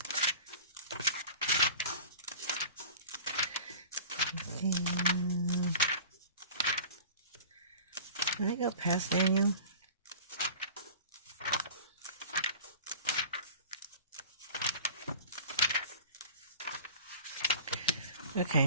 Can I go past Daniel?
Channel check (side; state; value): both; inverted; correlation -0.40